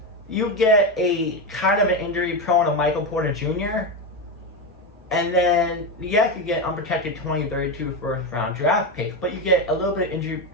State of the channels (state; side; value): normal; both; correlation 0.13